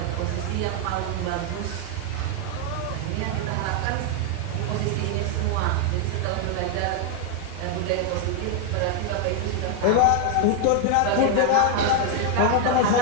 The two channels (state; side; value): different; both; correlation 0.00